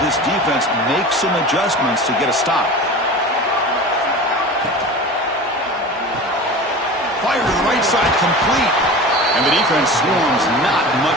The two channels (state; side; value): normal; both; correlation 0.34